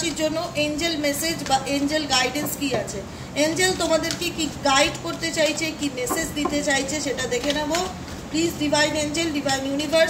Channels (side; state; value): both; identical; correlation 1.00